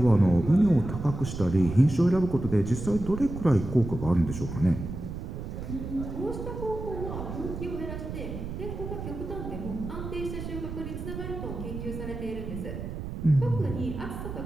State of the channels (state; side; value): noise; right; rumble, 7 dB below the sound